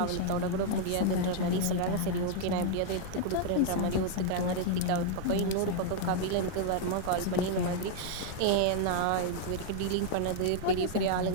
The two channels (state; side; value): different; both; correlation -0.01